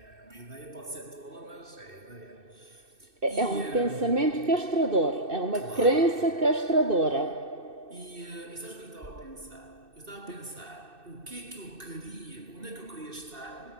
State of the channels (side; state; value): left; late; 2.6 ms